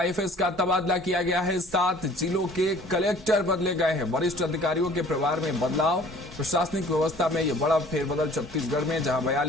का तबादला किया गया है। 7 जिलों के कलेक्टर बदले गए हैं। वरिष्ठ अधिकारियों के प्रभार में बदलाव। प्रशासनिक व्यवस्था में यह बड़ा फेरबदल छत्तीसगढ़ में, जहां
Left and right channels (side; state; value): both; normal; correlation 0.51